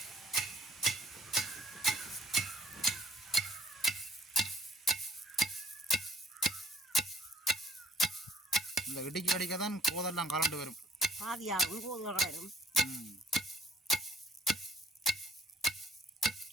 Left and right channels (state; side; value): normal; both; correlation 0.60